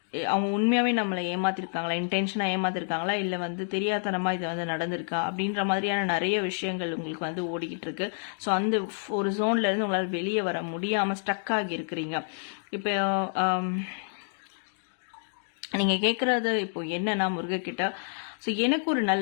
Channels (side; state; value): right; silent; digital silence